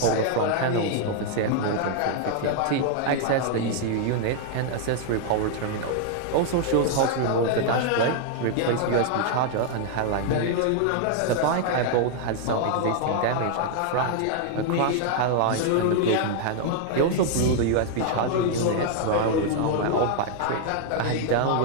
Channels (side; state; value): both; different; correlation 0.00